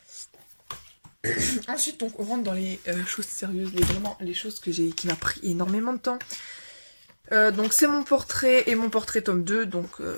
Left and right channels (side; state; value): both; inverted; correlation -1.00